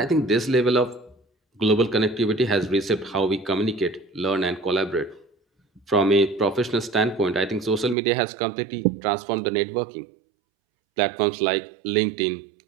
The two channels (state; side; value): drops out; left; at 8.0 s